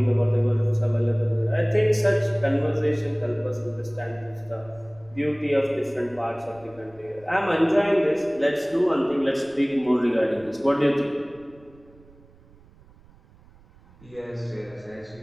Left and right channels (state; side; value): noise; right; rumble, 26 dB below the sound